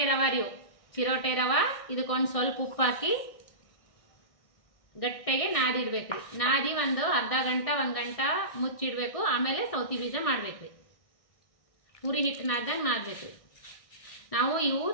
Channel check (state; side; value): late; right; 1.6 ms